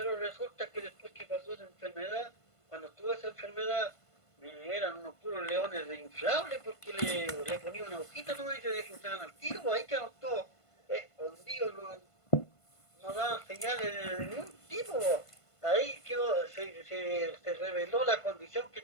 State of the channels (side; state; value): right; late; 1.5 ms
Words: resulta que después que pasó esa enfermedad, cuando tuve esa enfermedad, eran unos puros leones de inflable porque le ponía una hojita nomás y se desinflaban al tiro, pues ahí quedaron todos escondidos, no daban señales de ningún tipo, pues. Ahí se reveló la condición que